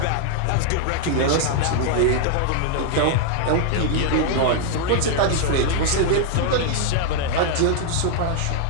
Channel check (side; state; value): both; different; correlation 0.00